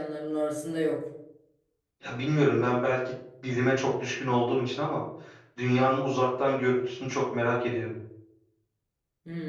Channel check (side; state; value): both; identical; correlation 1.00